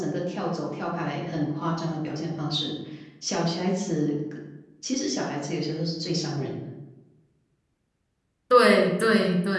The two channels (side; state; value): both; identical; correlation 1.00